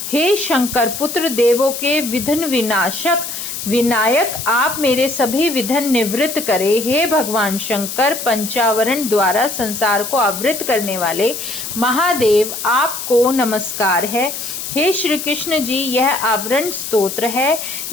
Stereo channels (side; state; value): left; noise; hiss, 7 dB below the sound